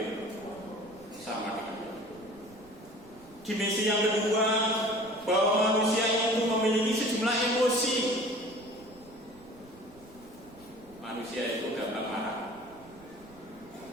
sama dengan hewan. Dimensi yang kedua, bahwa manusia itu memiliki sejumlah emosi. Manusia itu gampang marah.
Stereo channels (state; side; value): noise; right; rumble, 24 dB below the sound